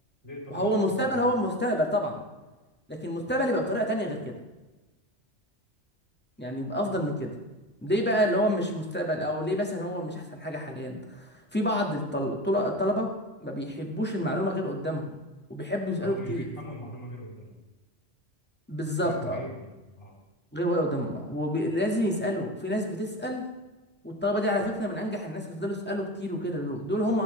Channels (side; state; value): both; normal; correlation 0.29